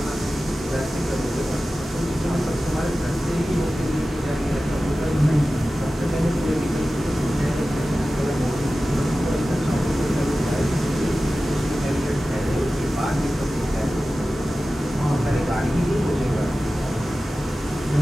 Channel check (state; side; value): normal; both; correlation 0.95